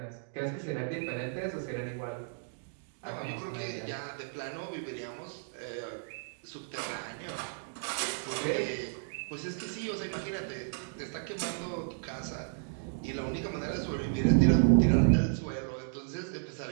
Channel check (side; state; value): left; silent; digital silence